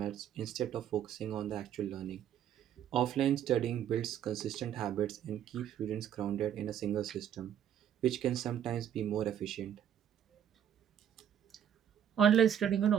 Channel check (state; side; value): quieter; left; 9.6 dB